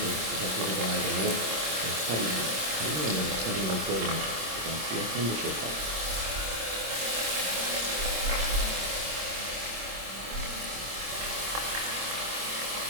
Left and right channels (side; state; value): left; late; 26 ms